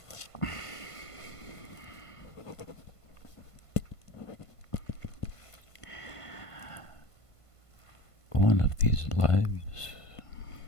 One of these lives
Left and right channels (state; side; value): late; right; 1.5 ms